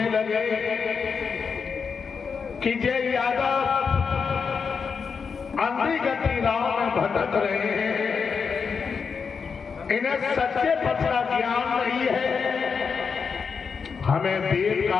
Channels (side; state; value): right; quieter; 5.8 dB